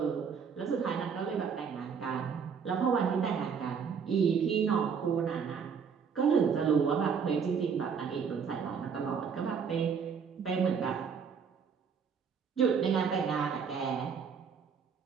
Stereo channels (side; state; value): left; quieter; 6.5 dB